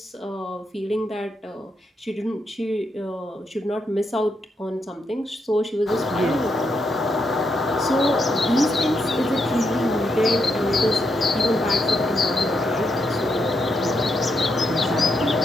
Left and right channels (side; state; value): both; normal; correlation 0.80